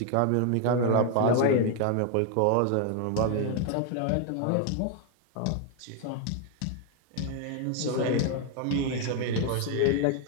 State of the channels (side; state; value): both; different; correlation 0.00